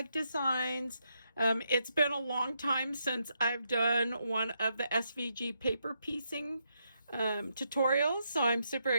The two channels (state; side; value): inverted; both; correlation -0.80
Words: Designs. It's been a long time since I've done one of the SVG paper piecing tutorials, so I'm super